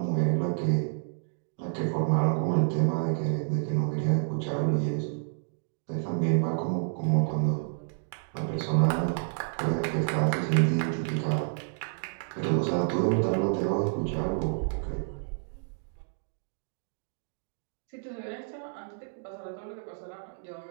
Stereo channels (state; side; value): silent; left; digital silence